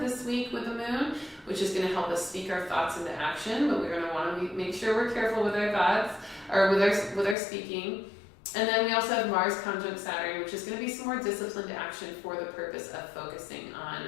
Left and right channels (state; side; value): drops out; right; at 7.4 s